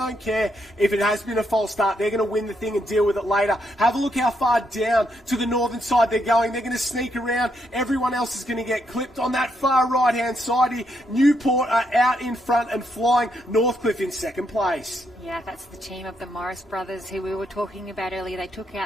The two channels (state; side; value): normal; both; correlation 0.78